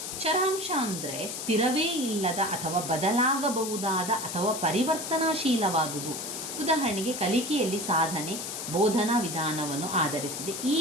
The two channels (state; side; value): noise; left; hiss, 6 dB below the sound